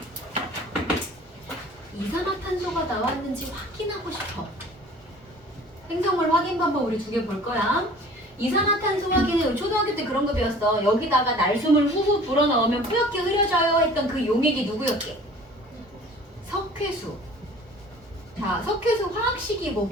이산화탄소가 나왔는지 확인하고 싶어. 생성물 확인 방법 우리 2개 볼 거야. 이산화탄소 확인은 초등학교 때 그런 거 배웠어. 여기다가 날숨을 후후 불어넣으면 뿌옇게 흐려져요 했던 그 용액이 누구였게? 석회수. 자, 석회수 화학식이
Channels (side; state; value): both; normal; correlation 0.47